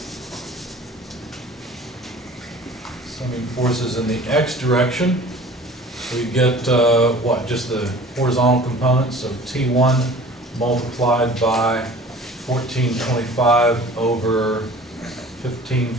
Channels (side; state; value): both; normal; correlation 0.45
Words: Summing forces in the x direction, we get what? Just the horizontal components, so T1 multiplied by 1425 over